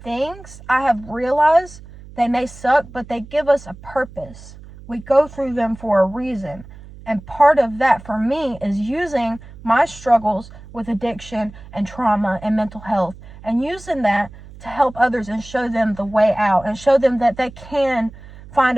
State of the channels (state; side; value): noise; right; hum, 18 dB below the sound